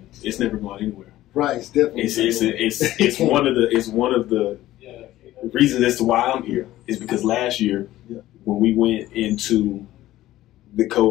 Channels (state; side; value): quieter; right; 15.1 dB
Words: It's never going anywhere. Right. It's definitely. It's one of the reasons as to why I'm here is because last year when we went into the